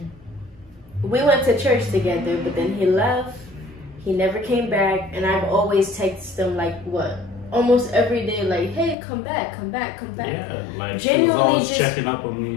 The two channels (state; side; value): drops out; right; at 9.0 s